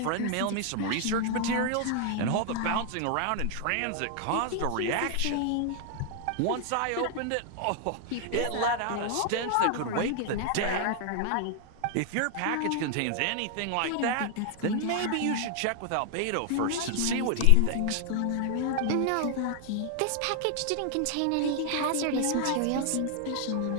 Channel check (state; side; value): different; both; correlation 0.00